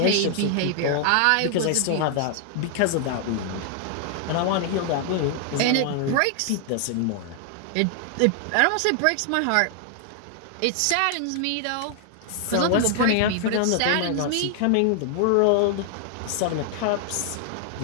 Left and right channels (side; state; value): both; different; correlation 0.00